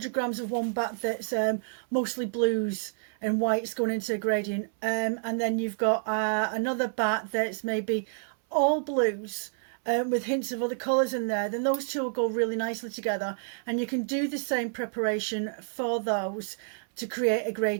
grams of one batt that's mostly blues and whites going into a gradient, and then you've got another batt that's maybe all blues with hints of other colours in there. Then those two will go really nicely together, and you can do the same preparation for those to create a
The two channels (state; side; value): silent; left; 59 dB below the other